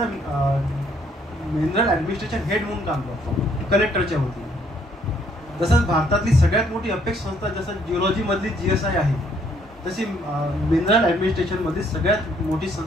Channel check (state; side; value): normal; both; correlation 0.66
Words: मिनरल ॲडमिनिस्ट्रेशन हेड म्हणून काम करतो कलेक्टरच्या वतीने. तसंच भारतातली सगळ्यात मोठी अपेक्स संस्था जसं जिओलॉजीमधली GSI आहे, तशी मिनरल ॲडमिनिस्ट्रेशनमधली सगळ्यात मोठी